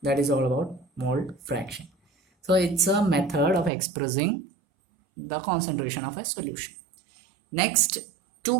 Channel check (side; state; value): left; drops out; at 3.7 s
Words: that is all about mole fraction. So it's a method of expressing the concentration of a solution. Next 2